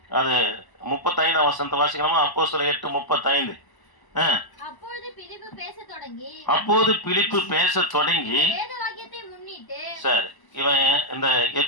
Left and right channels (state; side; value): late; right; 1.0 ms